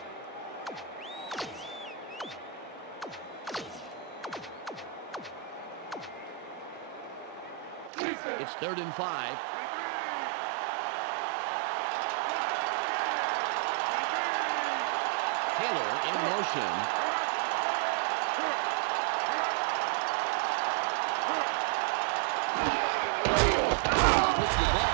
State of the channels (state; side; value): drops out; left; at 7.9 s